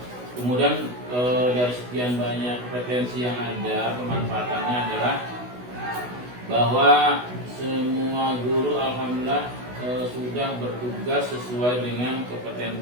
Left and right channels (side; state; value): left; late; 16 ms